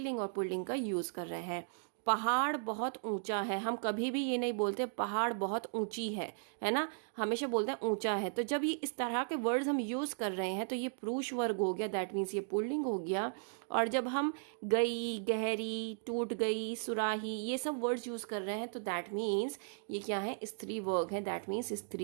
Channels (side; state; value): left; silent; digital silence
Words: और पुल्लिंग का यूज़ कर रहे हैं। पहाड़ बहुत ऊंचा है, हम कभी भी ये नहीं बोलते पहाड़ बहुत ऊंची है ना, हमेशा बोलते हैं ऊंचा है। तो जब ये इस तरह के वर्ड्स हम यूज कर रहे हैं तो ये पुरुष वर्ग हो गया, दैट मीन्स ये पुल्लिंग हो गया। और जब हम गई, गहरी, टूट गई, सुराही, ये सब वर्ड्स यूज कर रहे हैं तो दैट मीन्स ये क्या है, स्त्री वर्ग है, दैट मीन्स